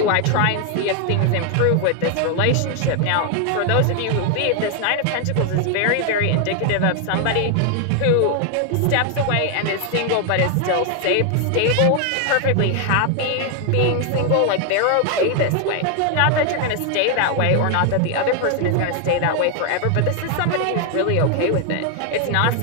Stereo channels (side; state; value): both; different; correlation 0.00